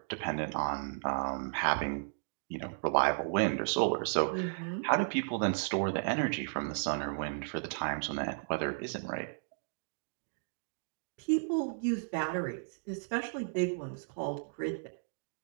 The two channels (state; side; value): silent; left; digital silence